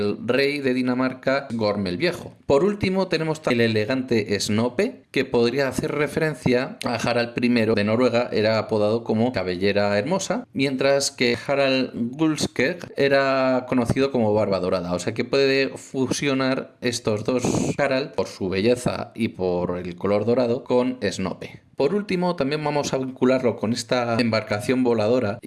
rey de Dinamarca, Gorm el Viejo. Por último tenemos el elegante Snope, que podría hacer referencia a Harald I de Noruega, era apodado como Cabellera Hermosa, mientras que Harald Gulskeg era conocido como Barba Dorada, o sea que puede fusionar estos dos Harald por su belleza y por el color dorado con Snope. Por último, también vamos a vincularlo con esta embarcación voladora,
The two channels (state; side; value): identical; both; correlation 1.00